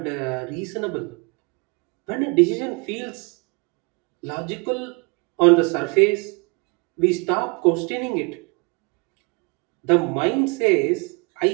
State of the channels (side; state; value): left; quieter; 30.7 dB